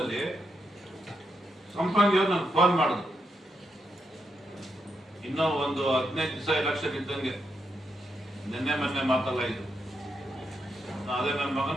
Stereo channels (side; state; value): both; normal; correlation 0.82